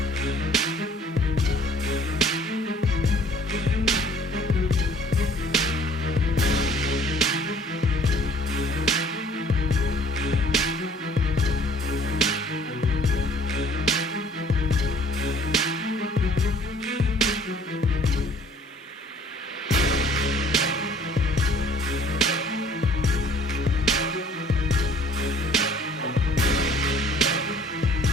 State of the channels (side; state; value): both; normal; correlation 0.56